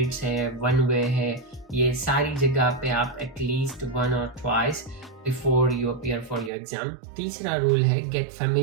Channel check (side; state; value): left; drops out; at 6.5 s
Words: है, one way है, ये सारी जगह पे आप एटलीस्ट 1 or twice before you appear for your exam. तीसरा रूल है gate